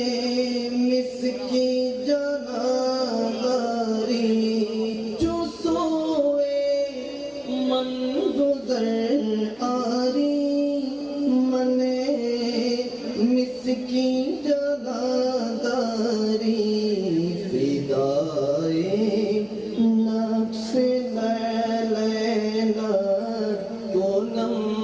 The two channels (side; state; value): left; noise; hum, 29 dB below the sound